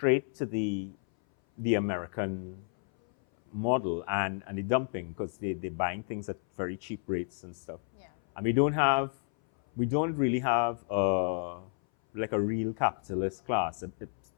to the American model and the dumping, because they're buying things at very cheap rates and stuff. And we don't really have a like a real capitalist class.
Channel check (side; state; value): right; silent; 57 dB below the other